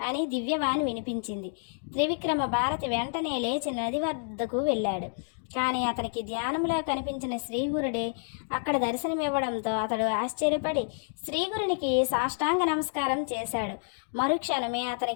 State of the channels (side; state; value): right; silent; digital silence